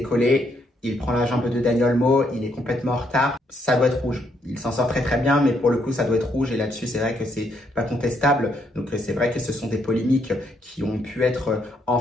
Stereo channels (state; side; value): normal; both; correlation 0.74